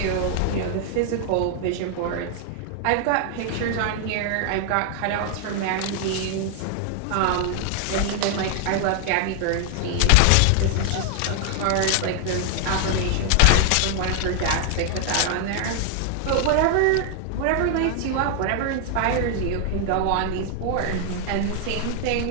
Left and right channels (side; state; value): both; different; correlation 0.00